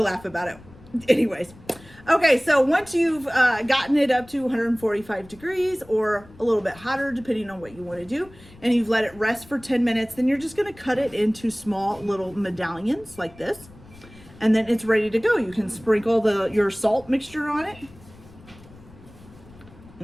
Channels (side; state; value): left; noise; rumble, 22 dB below the sound